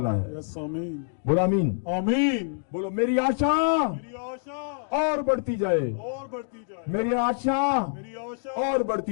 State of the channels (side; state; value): right; silent; digital silence